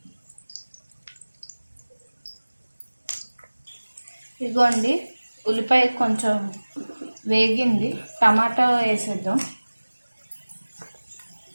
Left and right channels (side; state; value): both; inverted; correlation -1.00